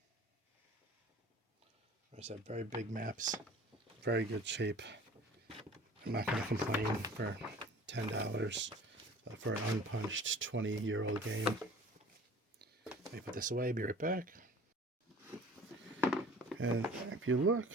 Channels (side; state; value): both; normal; correlation 0.45